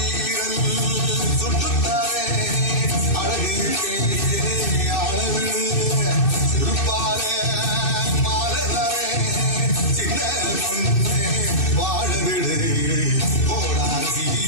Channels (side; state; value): right; late; 2.6 ms